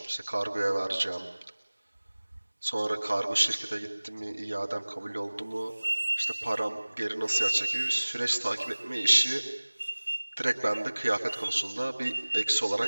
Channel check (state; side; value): inverted; both; correlation -1.00